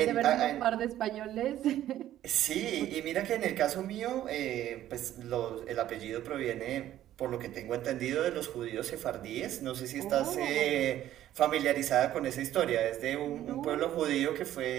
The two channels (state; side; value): quieter; left; 12.7 dB